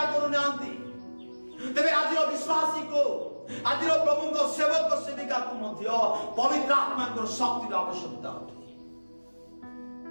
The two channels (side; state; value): both; inverted; correlation -1.00